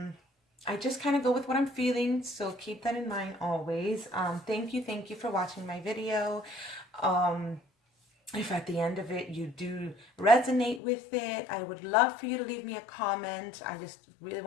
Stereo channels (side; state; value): right; drops out; at 10.8 s